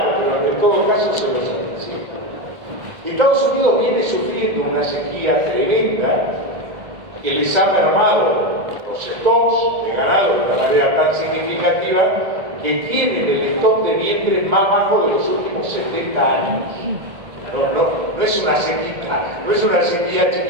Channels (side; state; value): left; late; 2.0 ms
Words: pero en todo caso se los anticipo. Estados Unidos viene sufriendo una sequía tremenda que les ha mermado los stocks de ganado de una manera tan significativa que tienen el stock de vientres más bajo de los últimos 70 años. No es una sequía